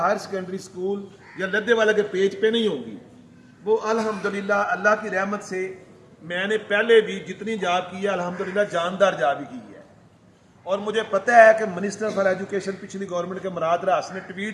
ہائر سیکنڈری اسکول یا لدھے والا کے پیج پہ نہیں ہوں گی، وہ الحمدللہ اللہ کی رحمت سے میں نے پہلے بھی جتنی جاب کی ہے الحمدللہ جاندار جاب ہی کی ہے. اور مجھے پتہ ہے کہ منسٹر فار ایجوکیشن پچھلی گورنمنٹ کے مراد راس نے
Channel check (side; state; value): both; identical; correlation 1.00